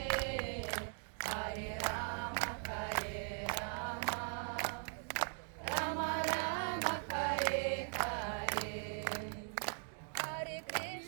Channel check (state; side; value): silent; left; 51 dB below the other